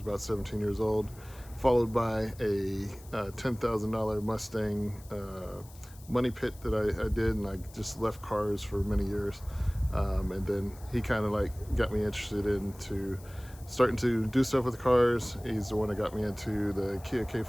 17 years old, followed by a $10,000 Mustang money pit that I did, and I just left cars for many years. And then he kind of like got me interested into starting to do stuff with cars. He's the one that got me into the Kia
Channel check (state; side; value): noise; left; hiss, 22 dB below the sound